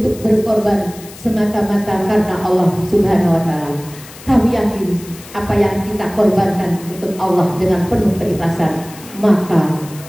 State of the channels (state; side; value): noise; left; hiss, 18 dB below the sound